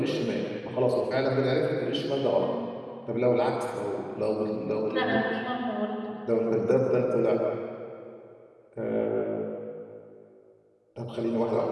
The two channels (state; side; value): identical; both; correlation 1.00